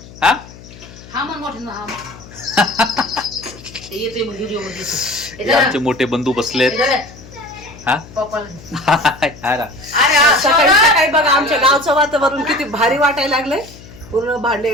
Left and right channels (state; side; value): noise; left; hum, 19 dB below the sound